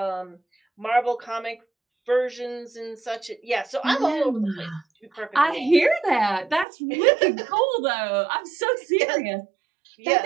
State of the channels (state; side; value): drops out; left; at 6.7 s